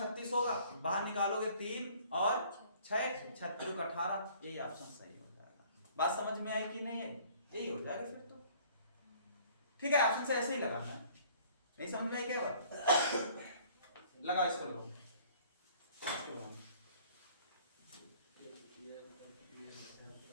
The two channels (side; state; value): both; inverted; correlation -0.55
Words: होगा, बाहर निकालोगे 3 और 6, 36 का 18, यही ऑप्शन सही हो जाएगा। बात समझ में आई कि नहीं है? यही हो जाएगा फिर तो ठीक है। ऑप्शन से ऐसे ही लगाना है, नहीं समझ में आई क्या बात? लगा इसको लो,